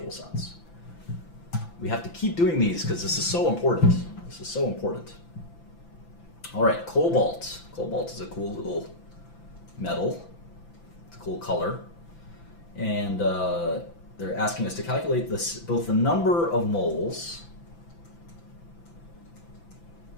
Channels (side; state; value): right; late; 5.9 ms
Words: sense. We have to keep doing these because this is so important. This is so important. All right, cobalt. Cobalt is a cool little metal. It's a cool color. And they're asking us to calculate this, both the number of moles